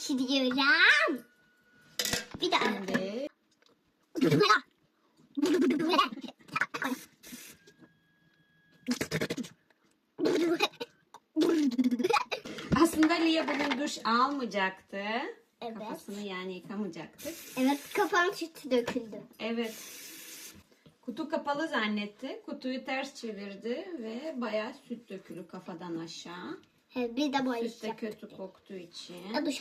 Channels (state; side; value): identical; both; correlation 1.00